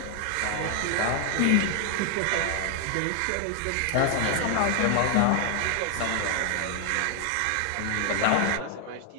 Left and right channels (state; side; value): different; both; correlation 0.00